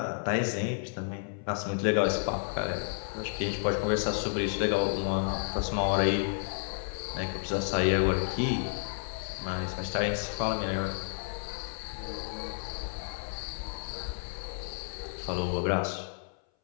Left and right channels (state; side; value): silent; right; 57 dB below the other